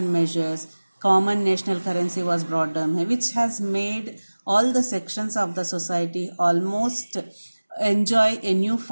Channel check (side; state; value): both; inverted; correlation -1.00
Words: measures, common national currency was brought down, which has made all the sections of the society almost enjoy a